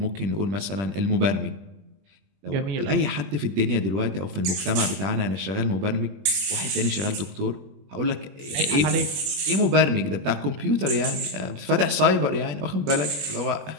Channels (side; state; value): left; late; 21 ms